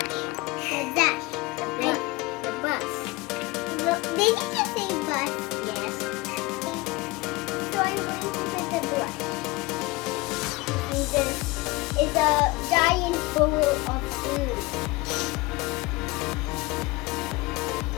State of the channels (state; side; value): quieter; right; 23.1 dB